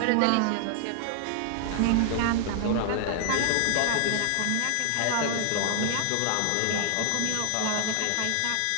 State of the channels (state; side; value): different; both; correlation 0.00